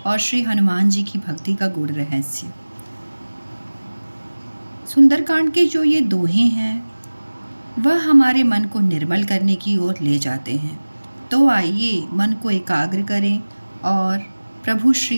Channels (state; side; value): inverted; both; correlation -1.00